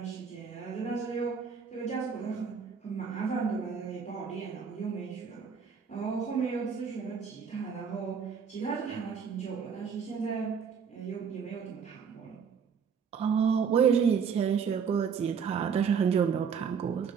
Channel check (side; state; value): left; quieter; 6.6 dB